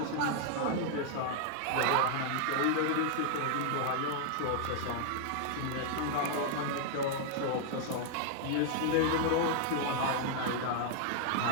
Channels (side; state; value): both; different; correlation -0.01